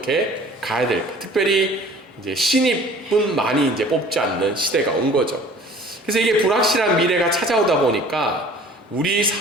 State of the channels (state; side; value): normal; both; correlation 0.48